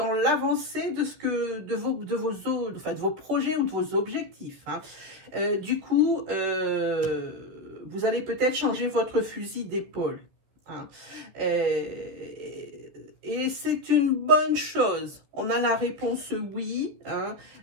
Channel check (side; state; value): left; late; 14 ms